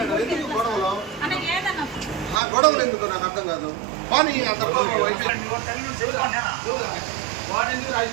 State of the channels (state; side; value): drops out; left; at 2.4 s